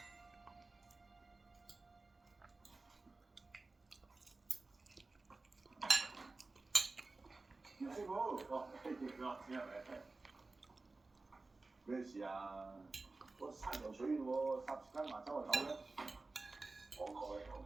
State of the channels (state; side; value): quieter; left; 3.5 dB